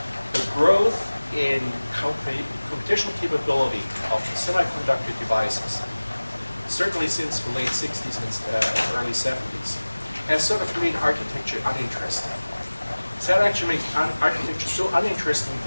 The growth in computational capability of semiconductor devices, certainly since the late 60s and early 70s, has sort of made architecture uninteresting. So that actually made architecture so uninteresting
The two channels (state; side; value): inverted; both; correlation -1.00